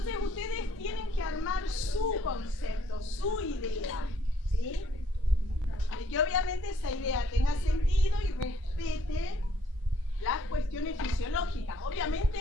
ustedes tienen que armar su concepto, su idea, ¿sí? Y que obviamente esa idea tenga sentido y respete las cuestiones fisiológicas. Obviamente,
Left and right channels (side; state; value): both; normal; correlation 0.65